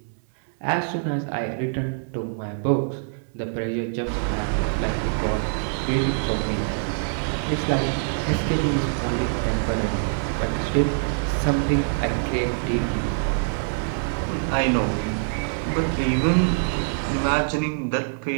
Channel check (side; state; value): left; silent; digital silence